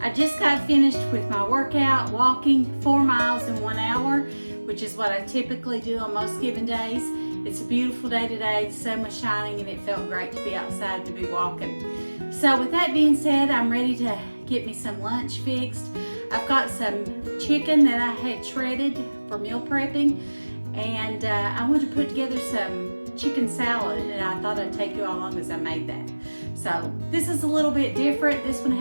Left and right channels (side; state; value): both; inverted; correlation -1.00